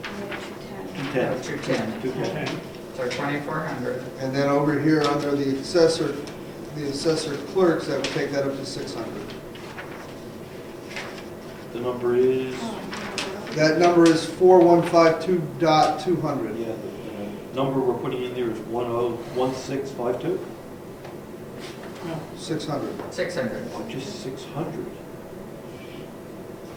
And 210. 210. Oh, 210. 210. So 2,400. And then over here, under the assessor clerks, that would take that up to 600. The number is, That number is 4152.200. yeah, the number we're putting in there is 101652? no, 600. 600. Oh, just 600.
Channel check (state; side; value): identical; both; correlation 1.00